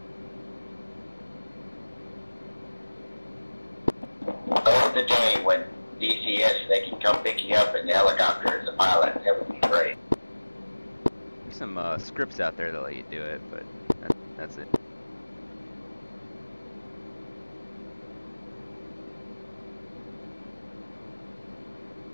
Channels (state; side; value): inverted; both; correlation -1.00